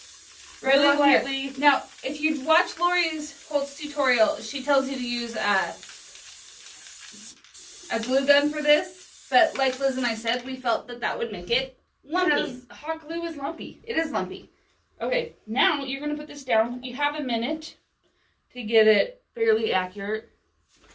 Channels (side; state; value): both; identical; correlation 1.00